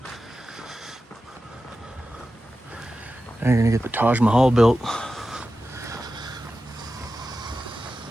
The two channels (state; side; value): normal; both; correlation 0.93